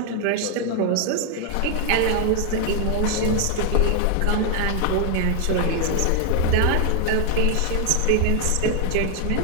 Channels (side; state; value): both; different; correlation 0.00